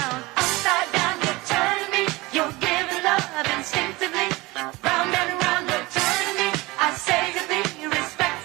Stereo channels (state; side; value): quieter; left; 22.0 dB